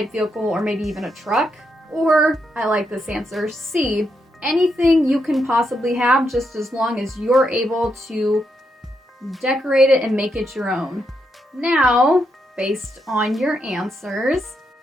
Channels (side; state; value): both; normal; correlation 0.81